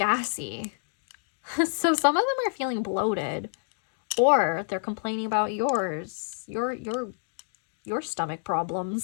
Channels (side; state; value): right; silent; digital silence